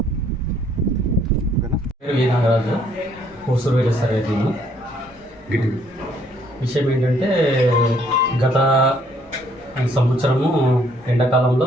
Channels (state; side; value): normal; both; correlation 0.66